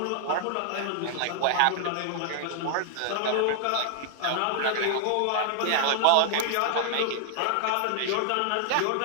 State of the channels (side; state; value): both; different; correlation 0.00